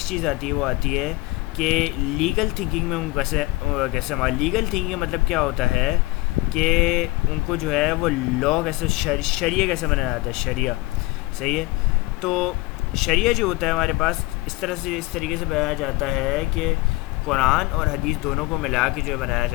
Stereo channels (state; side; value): quieter; right; 21.5 dB